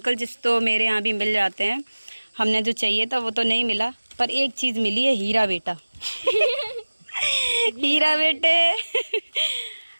जिस तो मेरे यहाँ भी मिल जाते हैं, हमने जो चाहिए था वो तो नहीं मिला, पर एक चीज़ मिली है, हीरा बेटा। हीरा बेटे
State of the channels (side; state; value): both; inverted; correlation -1.00